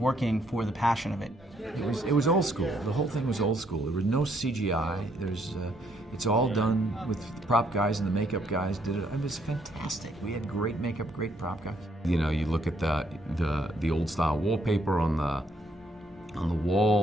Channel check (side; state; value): both; normal; correlation 0.70